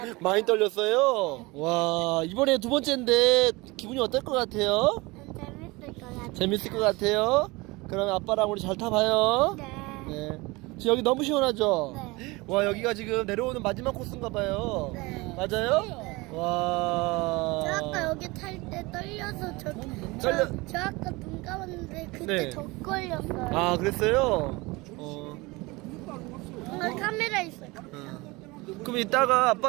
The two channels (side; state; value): left; quieter; 23.5 dB